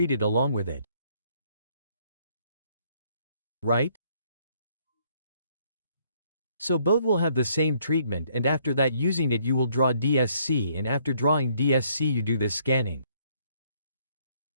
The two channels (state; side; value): inverted; both; correlation -0.67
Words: along with it. Right? So both will have the same treatment and after that using it you will draw DSC and after drawing DSC you do this scanning.